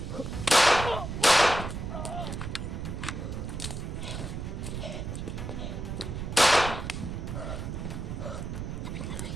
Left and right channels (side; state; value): right; noise; rumble, 5 dB below the sound